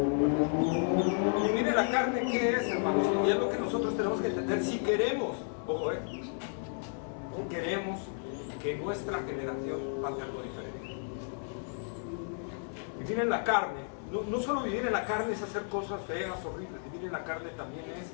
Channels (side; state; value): right; silent; 56 dB below the other